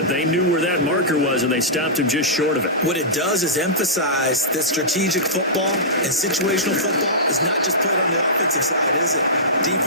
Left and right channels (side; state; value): both; normal; correlation -0.15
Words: they knew where that marker was, and they stopped him just short of it. What it does is emphasize that strategic football and situational football is not just played on the offensive side, is it?